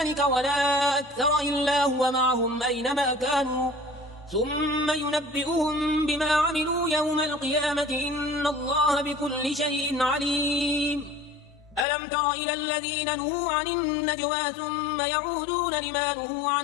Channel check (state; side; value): drops out; right; at 11.9 s